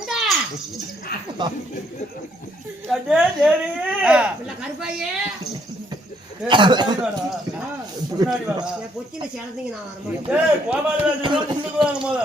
கருப்பாயே பொச்சில சேர்ந்தீங்க.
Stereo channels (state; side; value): normal; both; correlation 0.69